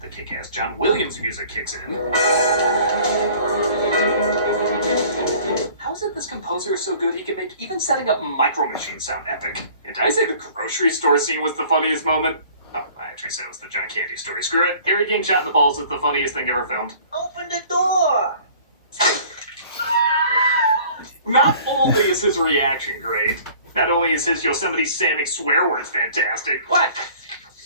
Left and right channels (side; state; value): both; inverted; correlation -0.50